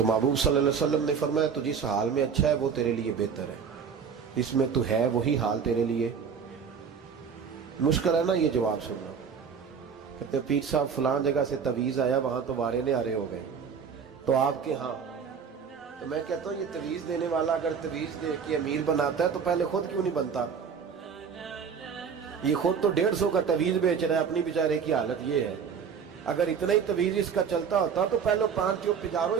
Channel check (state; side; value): quieter; left; 6.5 dB